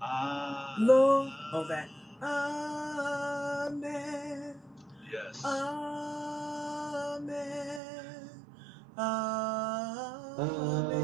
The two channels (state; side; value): drops out; left; at 7.8 s